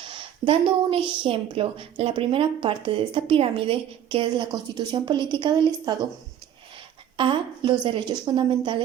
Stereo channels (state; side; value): quieter; left; 10.1 dB